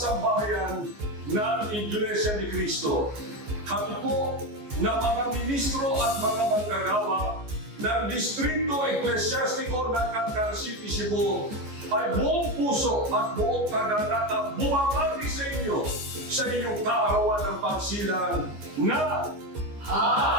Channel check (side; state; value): left; late; 14 ms